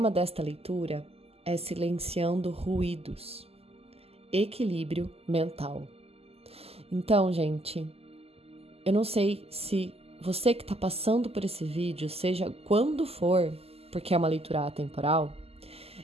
desta leitura é silenciando ruídos, equilíbrio mental. Então, gente, eu não sei se você que está passando por esse vídeo, seja quando for, porque é uma leitura atemporal,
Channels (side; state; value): left; late; 0.29 ms